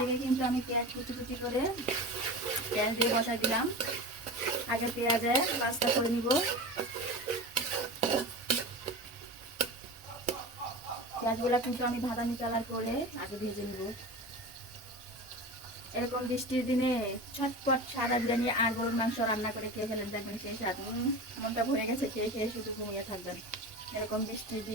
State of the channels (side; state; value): both; normal; correlation 0.30